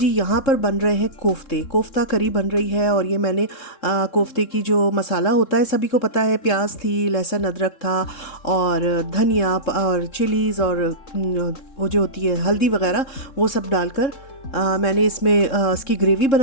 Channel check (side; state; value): right; late; 3.7 ms